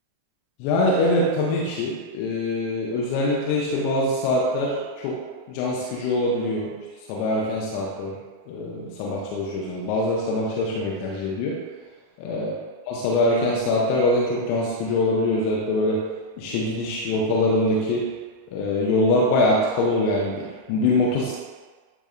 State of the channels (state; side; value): late; right; 32 ms